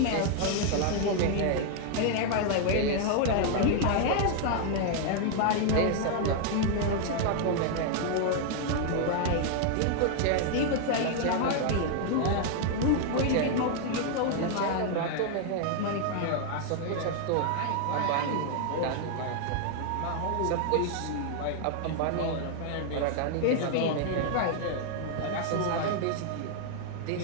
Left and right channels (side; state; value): both; different; correlation 0.00